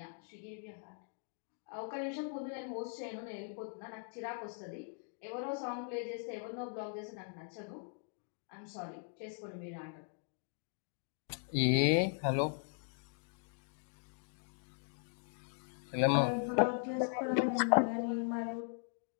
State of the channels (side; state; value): right; silent; 52 dB below the other